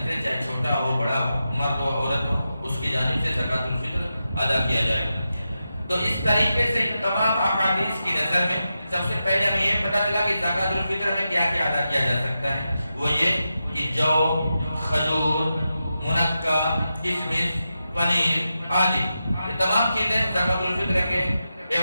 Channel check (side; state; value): both; inverted; correlation -0.89